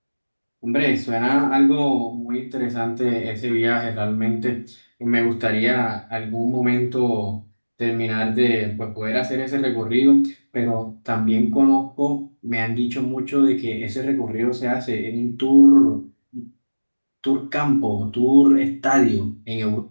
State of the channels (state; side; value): inverted; both; correlation -1.00